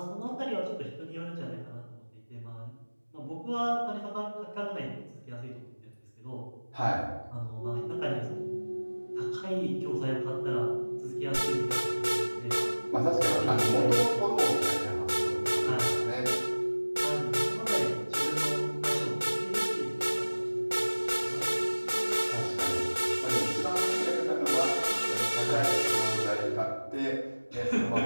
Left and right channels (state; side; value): inverted; both; correlation -1.00